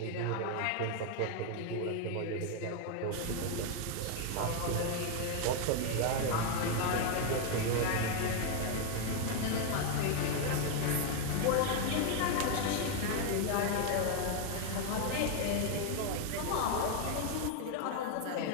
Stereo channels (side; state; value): both; different; correlation 0.01